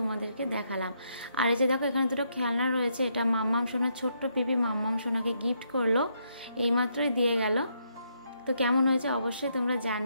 দেখালাম। আর এই যে দেখো এখানে দুটো খেলনা রয়েছে, এটা মাম্মাম সোনার ছোট্ট পিপি মাম্মাম সোনাকে গিফট করলো, এইমাত্রই দিয়ে গেল। তো কেমন হয়েছে অবশ্যই তোমরা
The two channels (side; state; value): both; inverted; correlation -0.76